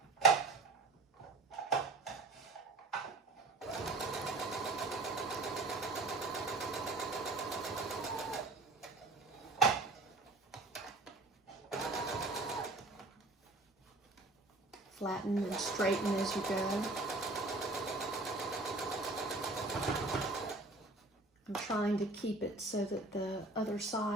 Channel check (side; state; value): left; quieter; 3.1 dB